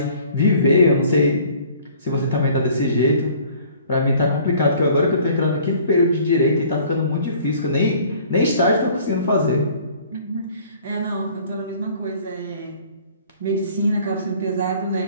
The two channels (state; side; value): inverted; both; correlation -0.53